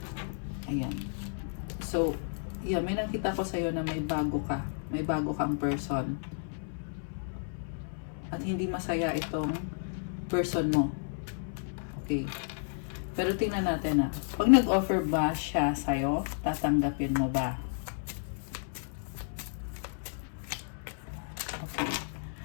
Ayan. So, yeah, may nakita ko sa'yo na may bago ka. May bago kang person. At hindi masaya itong person mo. Okay. Pero tingnan natin pag nag-offer ba siya sa'yo, tatanggapin mo ba? Okay.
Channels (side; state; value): right; silent; 56 dB below the other